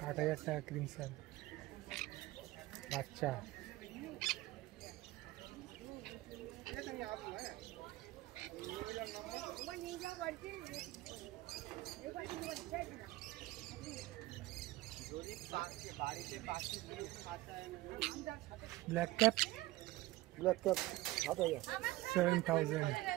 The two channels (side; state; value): left; quieter; 17.8 dB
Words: 8,000 টাকা ক্রিমসন বাচ্চা। Black cap 7,000। 7,000।